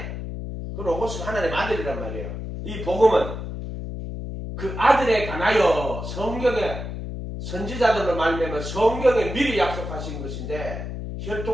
그 로고스가 하나님 아들이란 말이에요. 이 복음은 그 아들에 관하여 성경의 선지자들로 말미암아 성경에 미리 약속하신 것인데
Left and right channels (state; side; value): noise; left; hum, 7 dB below the sound